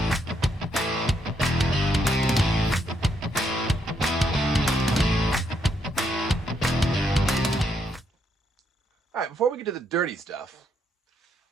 All right, before we get to the dirty stuff,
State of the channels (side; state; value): both; normal; correlation 0.76